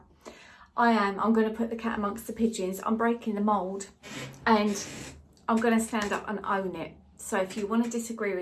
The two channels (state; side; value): identical; both; correlation 1.00